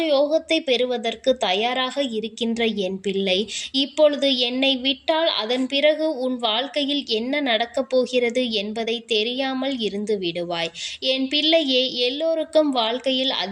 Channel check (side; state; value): both; identical; correlation 1.00